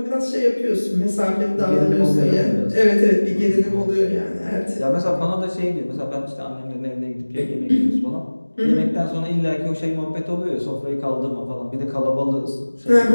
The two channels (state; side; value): inverted; both; correlation -1.00